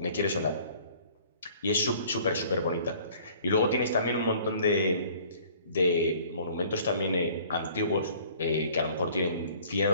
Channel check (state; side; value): inverted; both; correlation -0.53